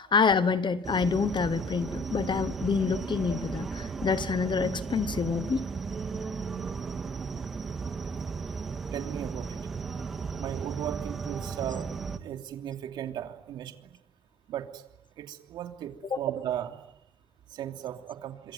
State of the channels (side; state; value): both; normal; correlation 0.54